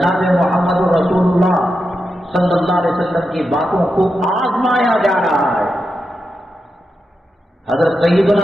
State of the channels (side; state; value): both; normal; correlation 0.88